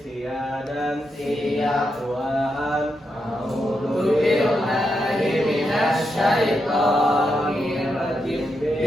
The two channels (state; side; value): normal; both; correlation 0.84